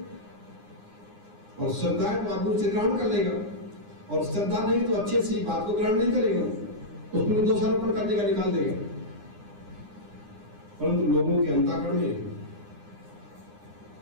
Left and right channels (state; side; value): late; left; 9.8 ms